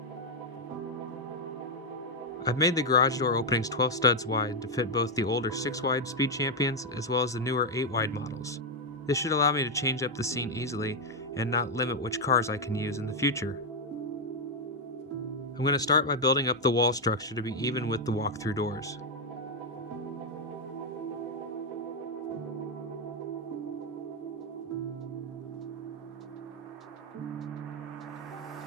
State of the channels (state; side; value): normal; both; correlation 0.01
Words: I've made the garage door openings 12 studs wide to fit both the older 6-wide Speed Champions as well as the newer 8-wide models. This should allow me to change up the scene easily and not limit which cars I can use in the future. I'm going to start by building up the wall structure to be even with the walk-through doors.